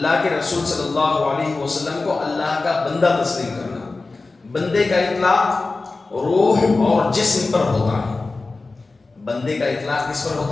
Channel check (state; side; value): quieter; right; 3.6 dB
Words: کے رسول صلی اللہ علیہ وسلم کو اللہ کا بندہ تسلیم کرنا، بندے کا اطلاق روح اور جسم پر ہوتا ہے، بندے کا اطلاق کس پر